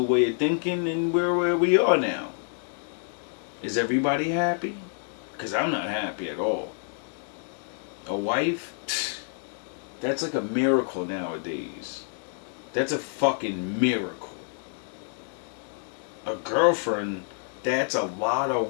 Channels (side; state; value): right; silent; 57 dB below the other